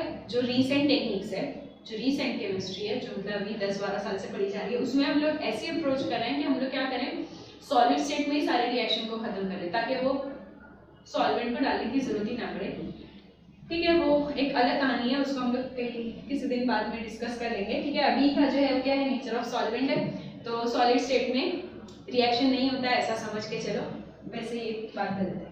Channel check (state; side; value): identical; both; correlation 1.00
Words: जो रीसेंट टेक्निक्स है, जो रीसेंट केमिस्ट्री है, जो मतलब अभी 10-12 साल से पढ़ी जा रही है, उसमें हम लोग ऐसी अप्रोच कर रहे हैं कि हम लोग क्या करें, सॉलिड स्टेट में ही सारे रिएक्शन को खत्म करें, ताकि वो सॉल्वेंट को डालने की जरूरत ही ना पड़े। ठीक है, वो एक अलग कहानी है, उसको हम लोग किसी दिन बाद में डिस्कस कर लेंगे। ठीक है, अभी का जो है क्या है, नेचर ऑफ सॉल्वेंट है, तो सॉलिड स्टेट में रिएक्शन नहीं होता है ऐसा समझ के चलो, वैसे ही बात कर लेते